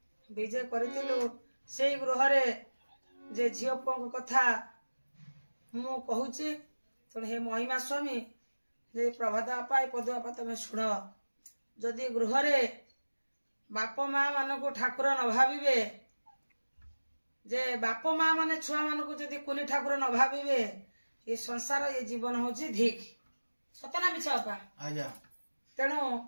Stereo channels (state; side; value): inverted; both; correlation -1.00